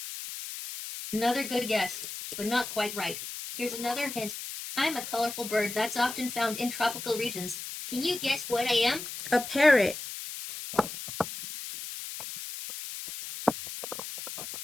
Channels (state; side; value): noise; left; hiss, 8 dB below the sound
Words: Another good guess, but not quite right. Here's another hint. I'm a colorful bird that's often found in tropical regions. Can you guess what I am? A parrot.